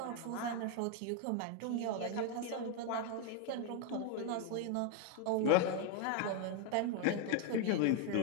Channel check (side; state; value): both; different; correlation 0.01